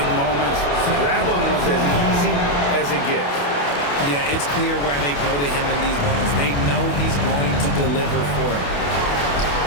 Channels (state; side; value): late; right; 28 ms